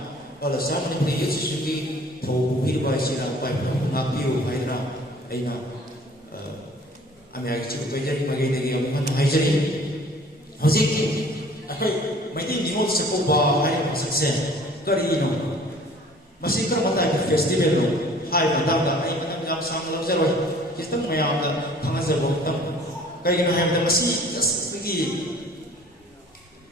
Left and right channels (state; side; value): normal; both; correlation 0.51